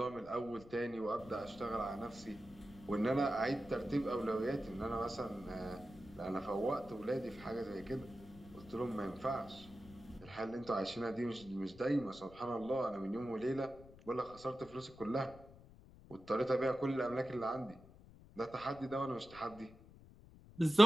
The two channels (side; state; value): left; noise; rumble, 20 dB below the sound